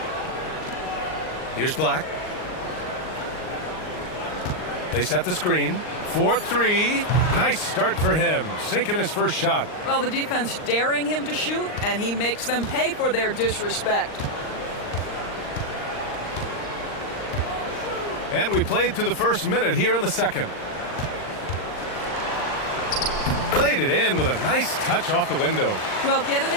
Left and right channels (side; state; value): right; late; 39 ms